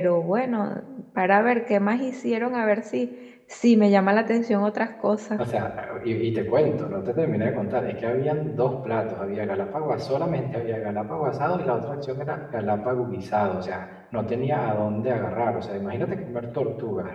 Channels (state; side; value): identical; both; correlation 1.00